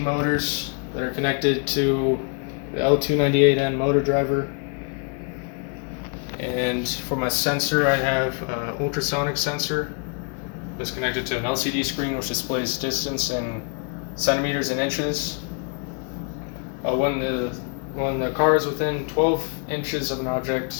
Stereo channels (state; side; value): quieter; right; 39.2 dB